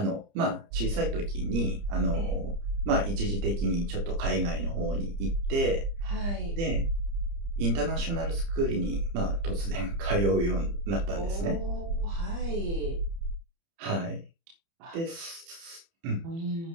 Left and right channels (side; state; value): left; late; 30 ms